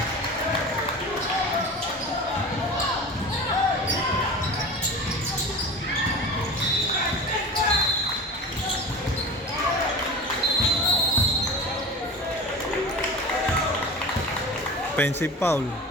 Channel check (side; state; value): both; normal; correlation 0.34